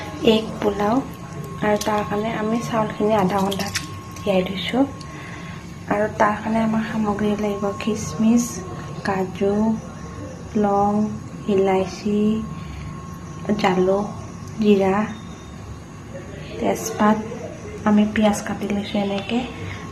এগ পোলাও আৰু তাৰ কাৰণে আমি চাউলখিনি আধা ঘণ্টা তিয়াই থৈছোঁ আৰু তাৰ কাৰণে আমাৰ সামগ্ৰী লাগিব কিচমিচ, কাজু, লং, ইলাইচি, জালুক, জিৰা, তেজপাত, আমি পিঁয়াজ কাটি লৈছোঁ এনেকৈ,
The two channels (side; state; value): both; identical; correlation 1.00